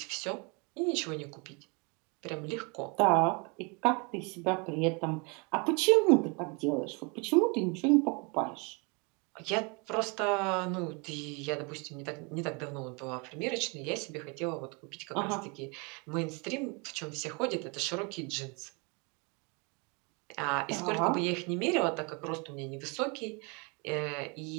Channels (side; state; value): left; quieter; 31.4 dB